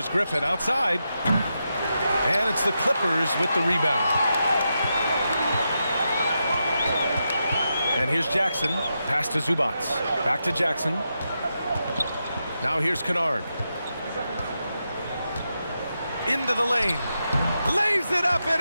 Griffin outside. And it's the Clippers with the rebound. And here's Jackson. Pass to Zubac. Back to Jackson. Now here's Kennard. Into the lane. Lays it up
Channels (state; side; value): inverted; both; correlation -0.86